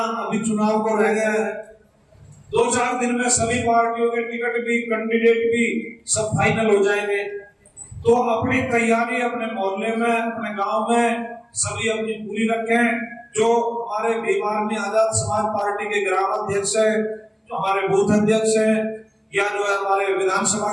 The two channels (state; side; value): identical; both; correlation 1.00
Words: अभी चुनाव को रह गया है। 2-4 दिन में सभी पार्टियों के टिकट भी, कैंडिडेट भी सब फाइनल हो जाएंगे। तो अपनी तैयारी अपने मोहल्ले में, अपने गांव में सभी अपनी पूरी रखें। जो हमारे भीमार्मी आजाद समाज पार्टी के ग्राम अध्यक्ष है, जो हमारे बूथ अध्यक्ष हैं, या जो है हमारे विधानसभा